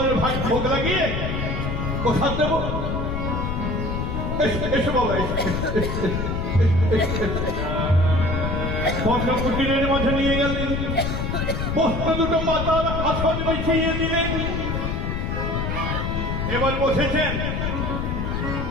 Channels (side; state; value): left; noise; rumble, 1 dB below the sound